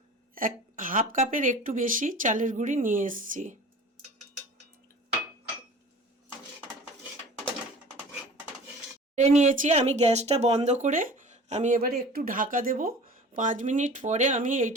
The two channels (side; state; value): both; normal; correlation 0.41